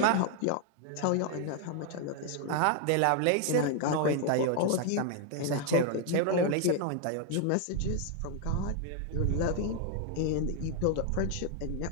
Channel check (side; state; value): both; different; correlation 0.00